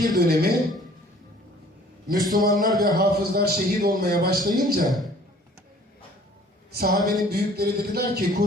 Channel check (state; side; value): normal; both; correlation 0.54